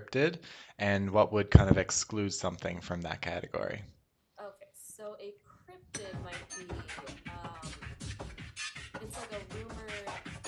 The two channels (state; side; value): identical; both; correlation 1.00